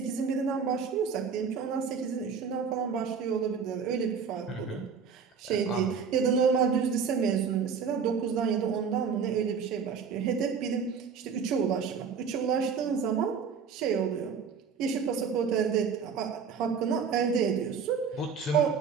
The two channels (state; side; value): quieter; left; 6.2 dB